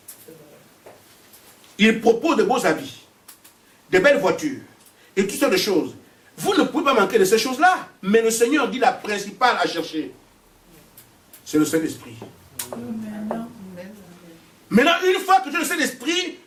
Il propose de beaux habits, de belles voitures et toutes sortes de choses. Vous ne pouvez pas manquer de ces choses-là. Mais le Seigneur dit la principale à chercher. C'est le Saint-Esprit. Maintenant, une fois que tu as le Saint-Esprit,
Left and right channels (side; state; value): both; identical; correlation 1.00